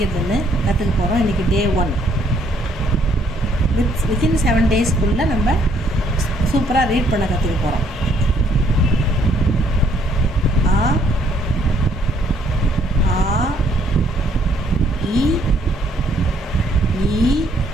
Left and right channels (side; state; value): both; normal; correlation 0.67